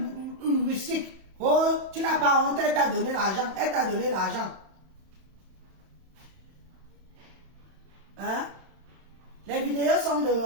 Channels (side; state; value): left; late; 31 ms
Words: heuristique. Oh, tu n'as pas honte, elle t'a donné l'argent. Elle t'a donné l'argent. Hein? Les vidéos sont